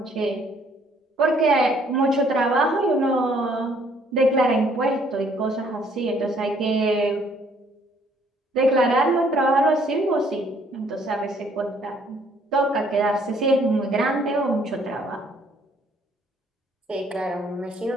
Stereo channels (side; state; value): both; normal; correlation 0.63